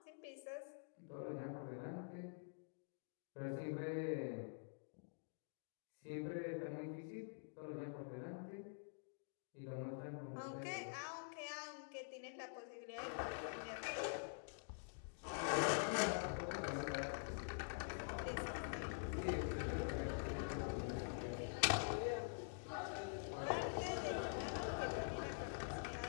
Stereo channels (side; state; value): right; silent; digital silence